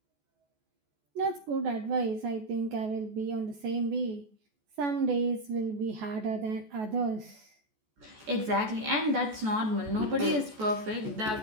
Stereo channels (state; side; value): late; left; 14 ms